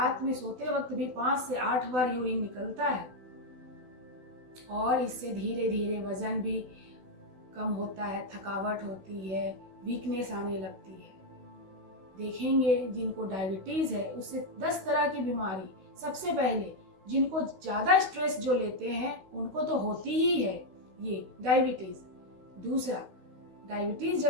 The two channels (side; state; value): left; late; 16 ms